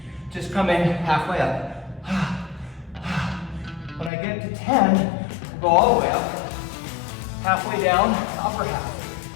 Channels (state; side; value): drops out; right; at 4.1 s